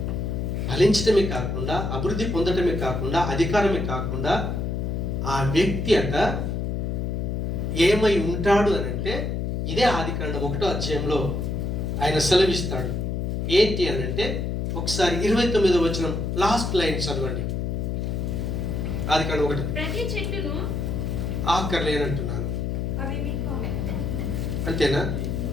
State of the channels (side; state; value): left; noise; hum, 1 dB below the sound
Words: ఫలించడమే కాకుండా, అభివృద్ధి పొందడమే కాకుండా, అధికారమే కాకుండా, ఆ వ్యక్తి అట ఏమై ఉంటాడు అని అంటే, ఇదే ఆదికాండం 1వ అధ్యాయంలో ఆయన సెలవిస్తాడు. ఏంటి అని అంటే, ఒకసారి 29వ వచనం లాస్ట్ లైన్ చదవండి. ఆదికాండం 1. ఆఖర్లేనంటున్నాను, అంతేనా?